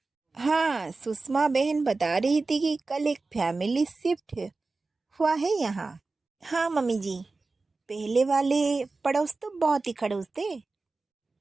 हाँ, सुषमा बहन बता रही थी कि कल एक फैमिली शिफ्ट हुआ है यहाँ। हाँ मम्मी जी, पहले वाले पड़ोस तो बहुत ही खड़ूस थे।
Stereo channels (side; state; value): left; quieter; 3.7 dB